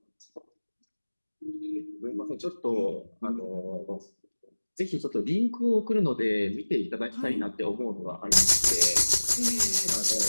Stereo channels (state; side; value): inverted; both; correlation -1.00